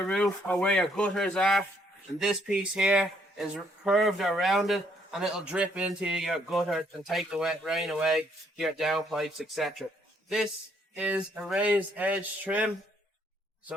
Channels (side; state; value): both; normal; correlation 0.69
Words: roof or where your gutters are, and this piece here is curved or rounded, and it'll drip into your gutter and take the wet rain away, your downpipes, etc. This is a raised edge trim.